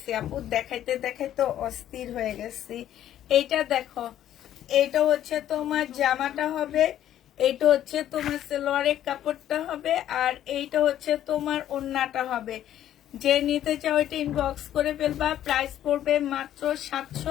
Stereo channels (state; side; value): quieter; right; 11.6 dB